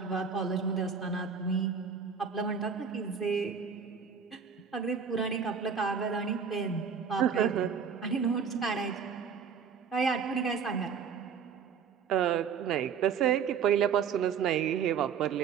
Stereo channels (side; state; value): left; quieter; 6.6 dB